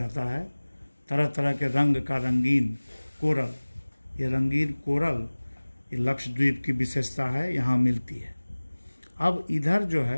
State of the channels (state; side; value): inverted; both; correlation -1.00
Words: है, तरह तरह के रंग का रंगीन कोरल। ये रंगीन कोरल ये लक्षद्वीप की विशेषता है, यहाँ मिलती है। अब इधर जो